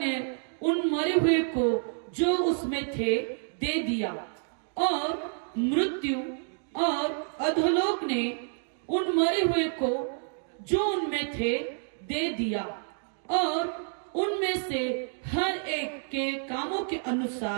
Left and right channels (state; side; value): silent; left; 59 dB below the other